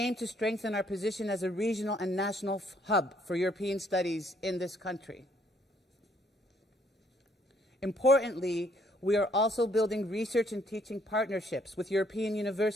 to strengthen our position as a regional and national hub for European studies in this country. Importantly, we are also building research and teaching partnerships with European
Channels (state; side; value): normal; both; correlation 0.67